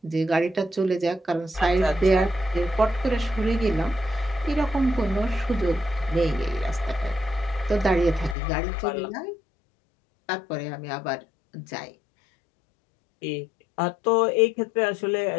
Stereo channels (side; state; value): right; drops out; at 8.3 s